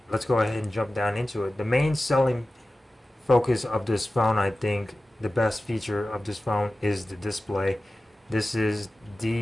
let's go ahead and jump down into it. The main selling focus of this phone, I think, the best feature of this phone is the display. This is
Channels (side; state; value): both; normal; correlation 0.95